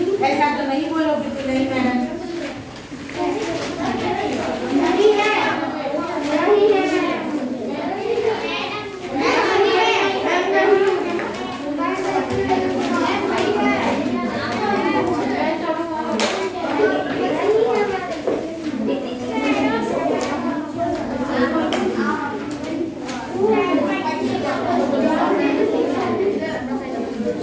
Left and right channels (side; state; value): both; identical; correlation 1.00